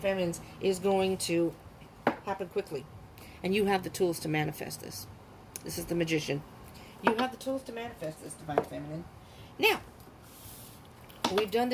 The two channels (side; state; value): both; identical; correlation 1.00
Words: is going to happen quickly, and you have the tools to manifest this. This is the Magician. You have the tools to manifest this, Divine Feminine. Now, we've done